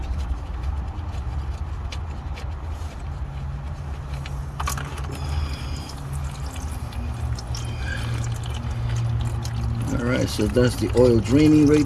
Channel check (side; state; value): both; identical; correlation 1.00